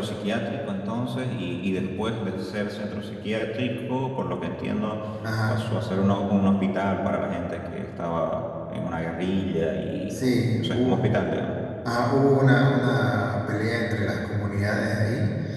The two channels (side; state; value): both; identical; correlation 1.00